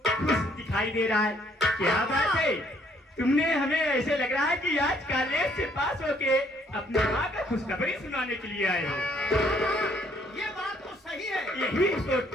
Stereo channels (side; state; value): both; normal; correlation 0.65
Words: खुश दिखाई दे रहा है, क्या बात है? तुमने हमें ऐसे लग रहा है कि आज कॉलेज से पास होके अपनी माँ का खुशखबरी सुनाने के लिए आए हो। ये बात तो सही है, यही